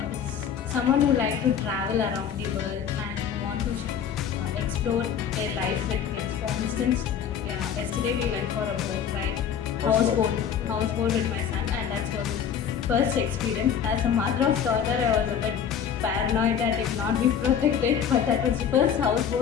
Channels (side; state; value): right; quieter; 8.0 dB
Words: It's someone who like to travel around the world and who want to explore their life with kids. For instance, yesterday we went for a boat ride, houseboat with my son, and that was his first experience. As a mother of daughter, I was a bit paranoid that it will not be protected, but that was the first